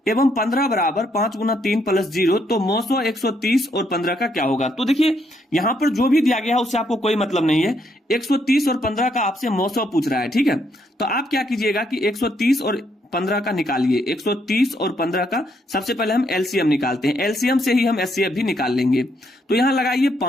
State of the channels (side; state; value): both; normal; correlation 0.74